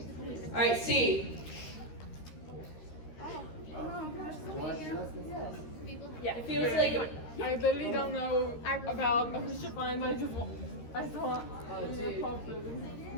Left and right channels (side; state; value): right; late; 13 ms